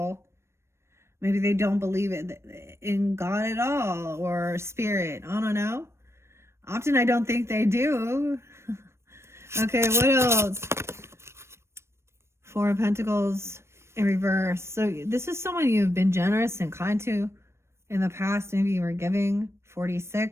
Maybe they don't believe in God at all, or spirit. I don't know. Often I don't think they do. Okay, what else? 4 of Pentacles in reverse. So this is someone you've been generous and kind to in the past. Maybe you were giving.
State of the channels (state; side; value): late; left; 0.13 ms